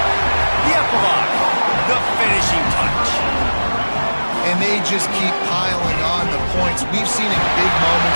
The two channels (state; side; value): inverted; both; correlation -1.00